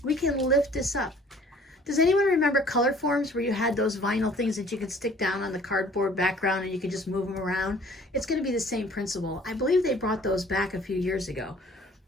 We can lift this up. Does anyone remember color forms where you had those vinyl things that you could stick down on the cardboard background and you could just move them around? It's going to be the same principle. I believe they brought those back a few years ago.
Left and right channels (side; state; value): both; normal; correlation 0.53